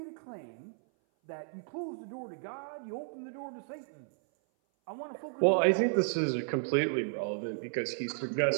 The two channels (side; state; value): left; silent; 55 dB below the other